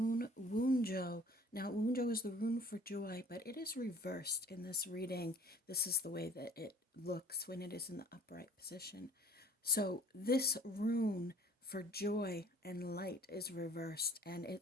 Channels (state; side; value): normal; both; correlation 0.51